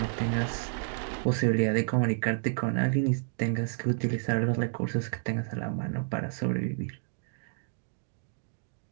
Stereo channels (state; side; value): silent; left; digital silence